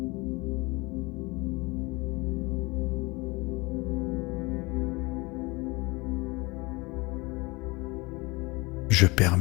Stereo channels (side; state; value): right; quieter; 24.9 dB